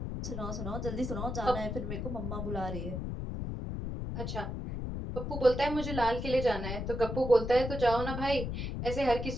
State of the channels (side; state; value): left; noise; rumble, 4 dB below the sound